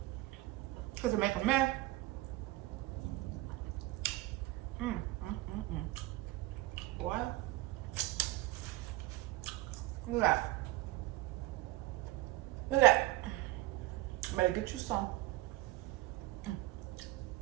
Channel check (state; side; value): quieter; left; 18.6 dB